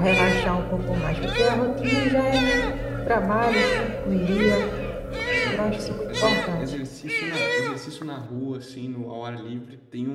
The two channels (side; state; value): both; identical; correlation 1.00